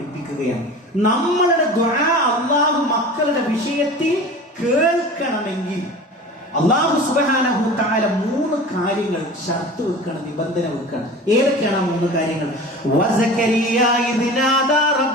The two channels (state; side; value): normal; both; correlation 0.37